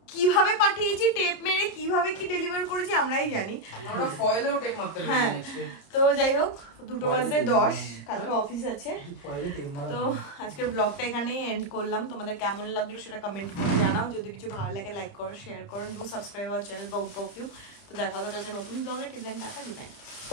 কিভাবে পাঠিয়েছি, টেপ মেরে কিভাবে কি ডেলিভার করেছি আমরাই জানি। আমরা ফয়েলেও টেপ মারতে হ্যাঁ তো যাই হোক, 2:10 কালকে অফিস আছে। তো আজকের ব্লগটা এখানেই এন্ড করলাম। তোমাদের কেমন লাগলো সেটা কমেন্ট করে জানাও, যদি কিছু ভালো লাগে লাইক করো, শেয়ার করো, do subscribe our channel Bong perfume. তো দেখা হবে কালকে নতুন ব্লগে। Till then tata, good night.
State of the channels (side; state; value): right; late; 30 ms